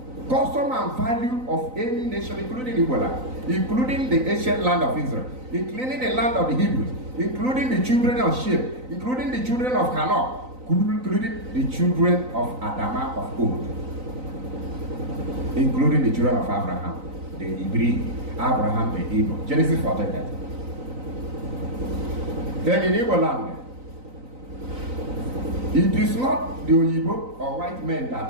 custom and value of any nation, including Ebola, including the ancient land of Israel, including the land of the Hebrews, including the children of Shem, including the children of Hanoch, including the children of Adama of old, including the children of Abraham, the Hebrew, Abraham, the Hebrew. Genesis 14:30. Then in Igbo land, it is not the Igbo or white men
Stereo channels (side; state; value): left; late; 3.9 ms